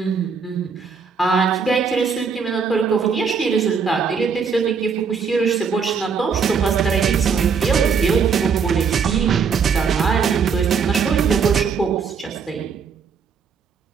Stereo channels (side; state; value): left; quieter; 5.9 dB